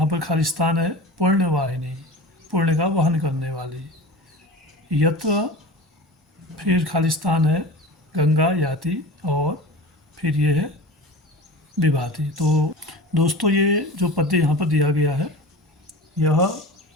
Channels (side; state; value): both; normal; correlation 0.34